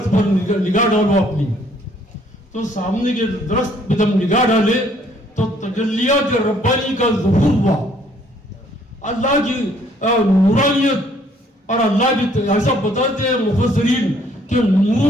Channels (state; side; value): normal; both; correlation 0.63